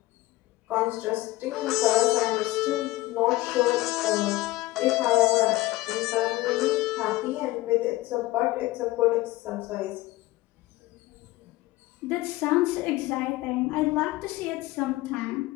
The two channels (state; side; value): quieter; right; 18.6 dB